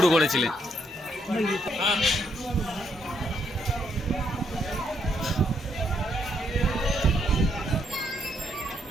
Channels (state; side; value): normal; both; correlation 0.74